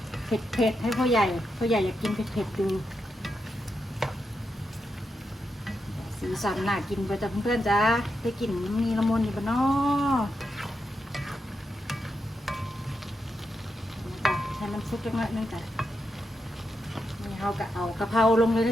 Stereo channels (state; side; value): normal; both; correlation 0.85